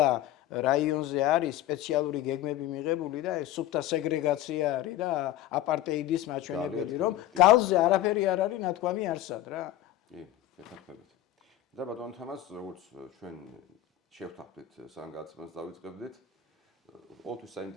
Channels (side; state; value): right; quieter; 13.3 dB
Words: რაიონზე არის სპეციალური გეგმები მიღებული და ეს სუფთა სეგრეგაცია არის და აპარტეიდის მაჩვენებელი, რომ გალზე არაფერი არ არის ნათქვამი არსად რა. კი, გეთანხმებით. და ბატონ თამას, როგორც ჩვენ შევთანხმდით სანგაცებას დავიწყებდით, ყოველთვის